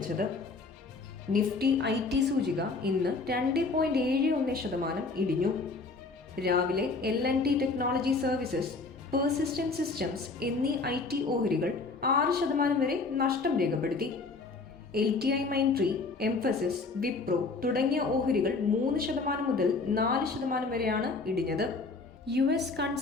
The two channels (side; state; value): right; quieter; 3.9 dB